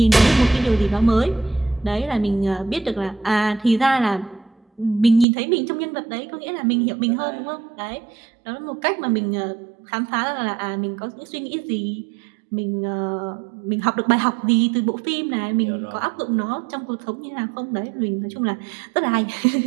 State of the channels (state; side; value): drops out; left; at 5.2 s